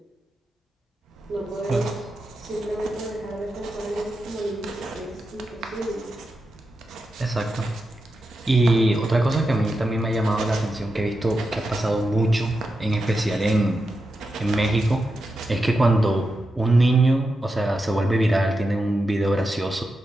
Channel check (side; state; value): both; normal; correlation 0.88